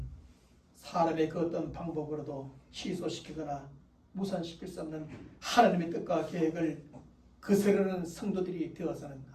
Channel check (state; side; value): identical; both; correlation 1.00